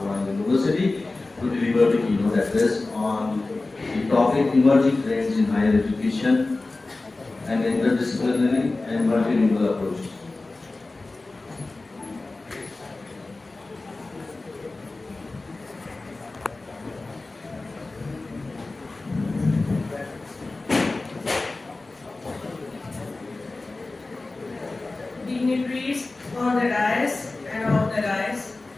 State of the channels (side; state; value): right; quieter; 3.3 dB